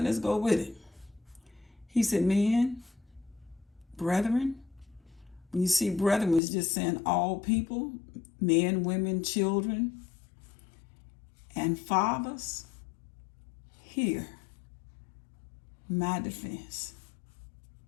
go with it. He said, men, brethren. When you see brethren, it's just saying all people, men, women, children, and fathers, hear my defense.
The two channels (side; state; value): right; drops out; at 6.4 s